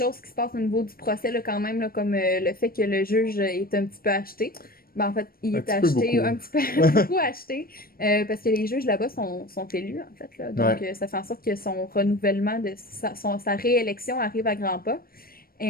qui se passent au niveau du procès, là, quand même, là, comme le fait que le juge est un petit peu acheté. Ben, en fait, il est acheté, un petit peu beaucoup acheté, parce que les juges là-bas sont élus, en fait. Là. Donc, Ouais. ça fait en sorte que son renouvellement, sa réélection arrive à grands pas.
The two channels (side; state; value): right; late; 0.43 ms